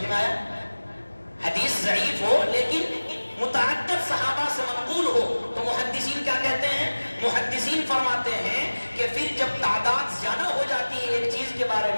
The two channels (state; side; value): inverted; both; correlation -1.00